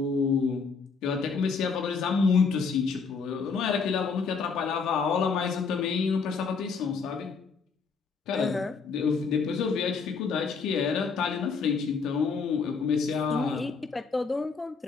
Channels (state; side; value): quieter; right; 5.2 dB